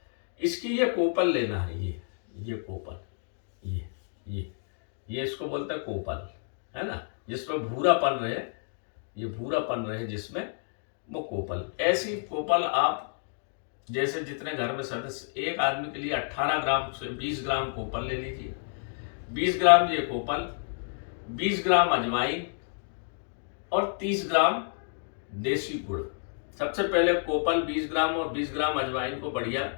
इसकी ये कोपल लेना है, ये कोपल, ये इसको बोलते हैं कोपल, है ना, जिसमें भूरापन रहे, ये भूरापन रहे जिसमें, वो कोपल। ऐसी कोपल आप जैसे जितने घर में सदस्य, एक आदमी के लिए 18 ग्राम से 20 ग्राम कोपल ले लीजिए। 20 ग्राम ये कोपल, 20 ग्राम अजवाइन और 30 ग्राम देसी गुड़। सबसे पहले कोपल 20 ग्राम और 20 ग्राम अजवाइन को बढ़िया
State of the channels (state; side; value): silent; right; digital silence